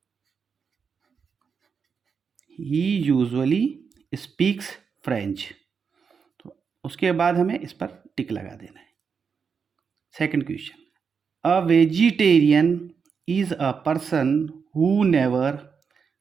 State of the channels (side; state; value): left; quieter; 6.0 dB